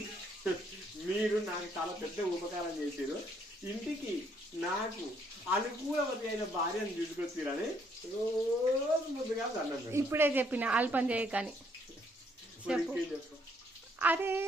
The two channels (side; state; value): both; normal; correlation 0.69